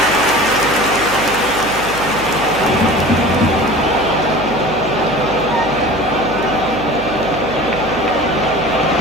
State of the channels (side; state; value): right; noise; hum, 12 dB below the sound